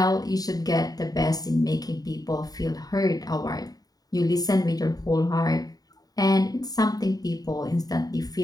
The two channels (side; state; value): right; late; 0.18 ms